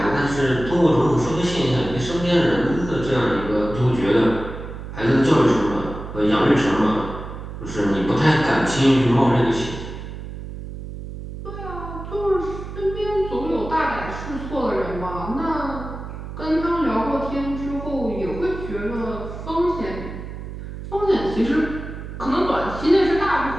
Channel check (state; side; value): noise; right; hum, 10 dB below the sound